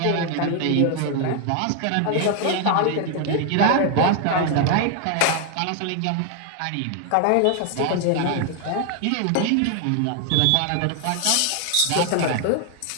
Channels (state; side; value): different; both; correlation 0.00